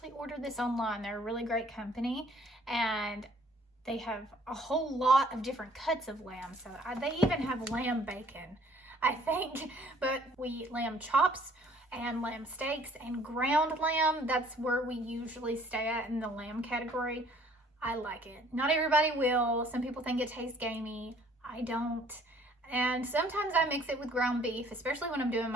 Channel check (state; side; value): normal; both; correlation 0.58